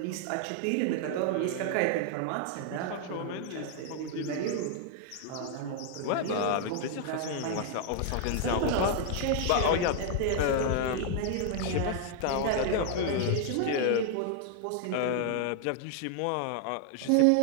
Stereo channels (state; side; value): different; both; correlation 0.00